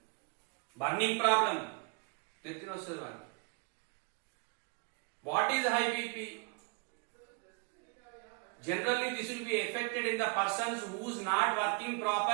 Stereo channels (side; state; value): left; quieter; 32.3 dB